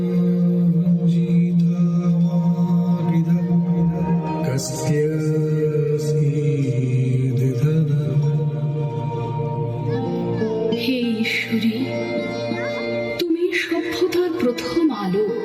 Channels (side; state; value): both; identical; correlation 1.00